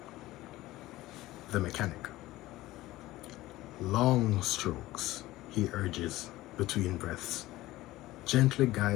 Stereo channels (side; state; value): right; quieter; 17.3 dB